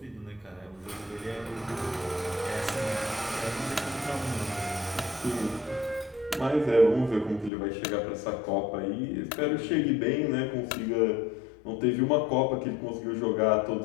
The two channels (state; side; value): drops out; right; at 7.5 s